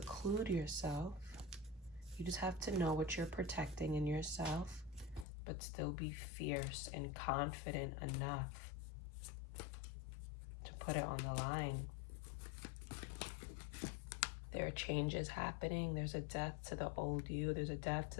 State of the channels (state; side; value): drops out; right; at 5.2 s